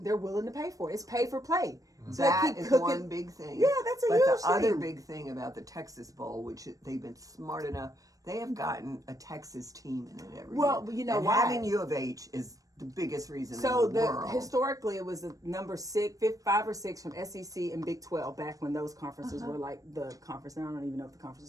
they're willing to pay for it. It's pay for play. So that is one big thing. Yeah, that's a but huge the other thing. big thing about the Texas Bowl, which they've been smart enough, they have gotten a Texas team in it every year. Well, you know and why? having U of H is the biggest reason So in the world. historically, it was the number 5 or 6 from SEC and Big 12 back when those conferences were like the conference. Now I don't even know what the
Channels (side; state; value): left; late; 0.16 ms